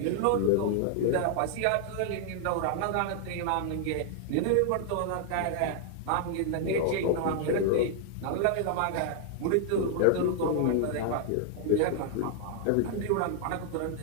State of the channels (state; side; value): different; both; correlation -0.01